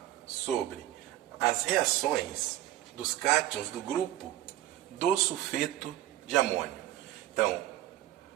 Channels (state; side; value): quieter; left; 13.9 dB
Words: sobre as reações dos cátions do grupo do sulfeto de amônio. Então,